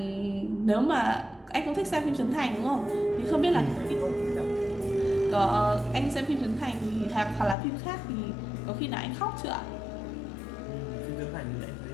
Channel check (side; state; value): right; drops out; at 7.6 s